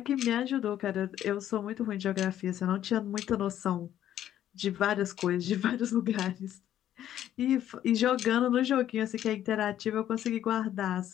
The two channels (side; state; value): right; quieter; 11.5 dB